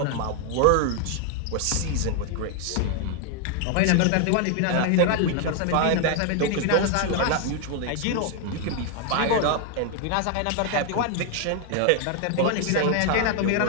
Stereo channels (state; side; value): different; both; correlation 0.00